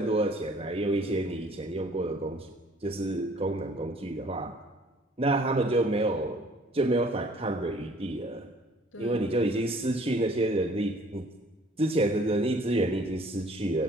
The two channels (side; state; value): both; normal; correlation 0.56